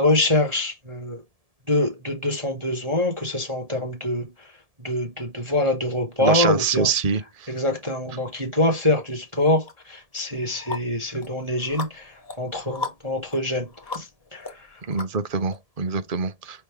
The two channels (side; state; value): left; late; 1.7 ms